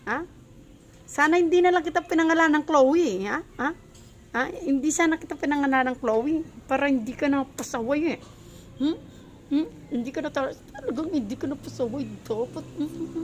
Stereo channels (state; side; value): identical; both; correlation 1.00